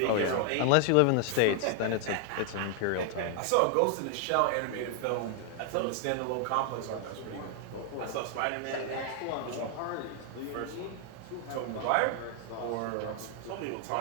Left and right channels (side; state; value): both; different; correlation 0.00